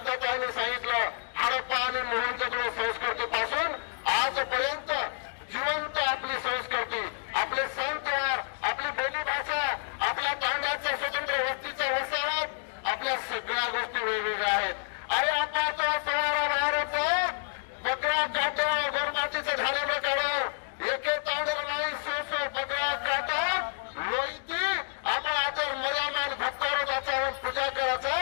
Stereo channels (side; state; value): right; silent; digital silence